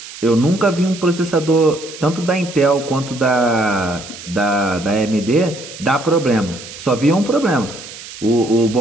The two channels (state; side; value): noise; right; hiss, 14 dB below the sound